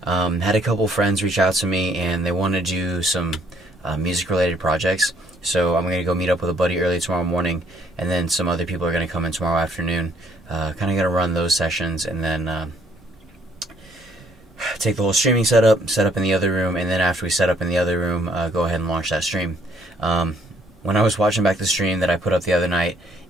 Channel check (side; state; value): both; normal; correlation 0.65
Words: Had a couple friends reach out to me, and they wanted to do some music-related projects. So I'm going to go meet up with a buddy early tomorrow morning, and then some other people are going to come in tomorrow afternoon. Kind of going to run those sessions, and then take the whole streaming setup, set up in the other room, and then after we set up in the other room, go ahead and launch that stream. When I was watching back the stream that I put up the other night,